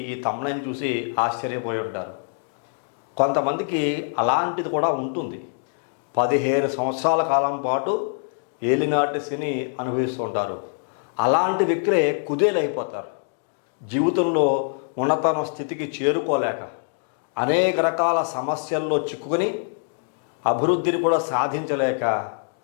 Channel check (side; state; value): right; silent; digital silence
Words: ఈ తమ్ముళ్ళని చూసి ఆశ్చర్యపోయి ఉంటారు. కొంతమందికి అలాంటిది కూడా ఉంటుంది. 15 సంవత్సరాల కాలం పాటు ఏలినాటి శని అనుభవిస్తూ ఉంటారు. అలాంటి వ్యక్తులే కుదేలైపోతారు. జీవితంలో ఉన్నతన స్థితికి చేరుకోలేక అనేక రకాల సమస్యల్లో చిక్కుకొని అభివృద్ధిని కూడా సాధించలేక